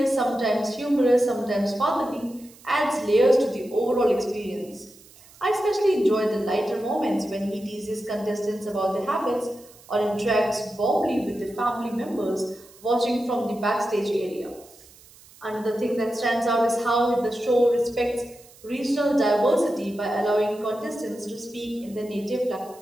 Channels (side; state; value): right; noise; hiss, 24 dB below the sound